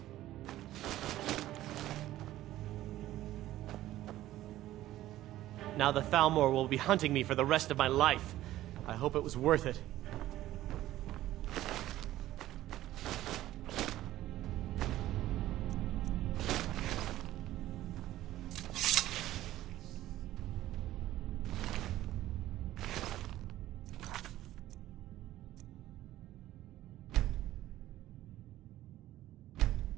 Now the Thalmor will be hunting me for the rest of my life. I hope it was worth it.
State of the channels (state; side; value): quieter; left; 14.6 dB